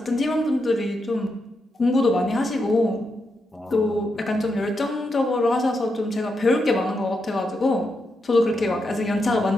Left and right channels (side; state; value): both; normal; correlation 0.84